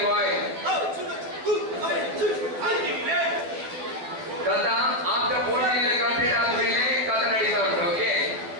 boys. ಕಥಾ after 14 year complete ಆದ್ಮೇಲೆ ಕಥಾ ನಡೀತಾ ಉಂಟು. Okay,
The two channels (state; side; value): late; left; 12 ms